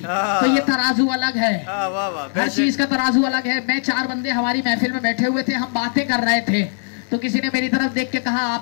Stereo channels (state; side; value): silent; right; digital silence